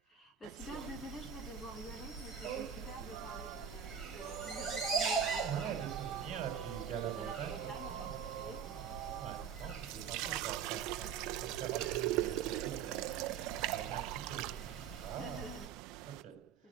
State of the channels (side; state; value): left; quieter; 7.5 dB